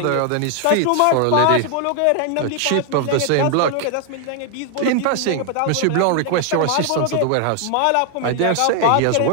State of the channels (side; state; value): both; different; correlation 0.00